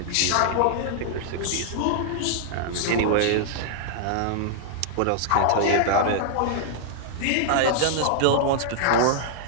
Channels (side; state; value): both; different; correlation -0.01